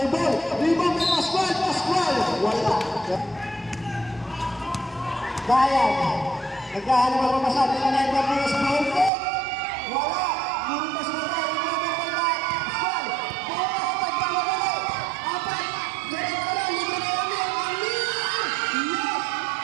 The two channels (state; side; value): drops out; left; at 9.1 s